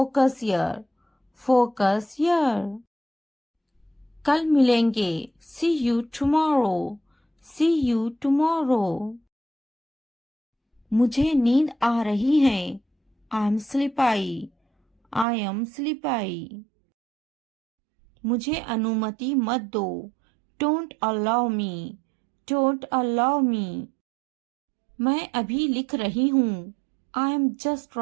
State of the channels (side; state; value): left; drops out; at 15.2 s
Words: हियर, फोकस हियर। कल मिलेंगे, see you tomorrow, see you tomorrow. मुझे नींद आ रही है, आई एम स्लीपाई, आई एम स्लीपाई। मुझे अनुमति मत दो, don't allow me, don't allow me. मैं अभी लिख रही हूँ, I am just